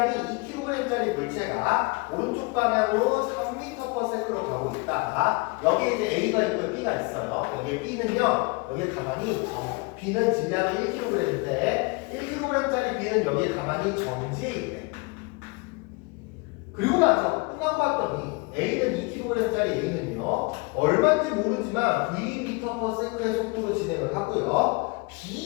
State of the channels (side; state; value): right; quieter; 28.3 dB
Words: 2kg짜리 물체가 오른쪽 방향으로 3m/s로 가고 있다. 여기에 이제 A가 있고 B가 있어요. 여기에 B는요, 여기에 가만히 B는 질량이 1kg인데 1kg짜리 B는 여기에 가만히 정지해 있네. 그리고 나서 끝나고 봤더니 A는 2kg짜리 A는요 얼마인지 모르지만 v/m의 속도로 진행을 하고요.